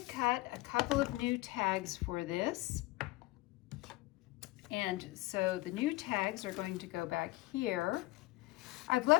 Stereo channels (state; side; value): quieter; right; 19.0 dB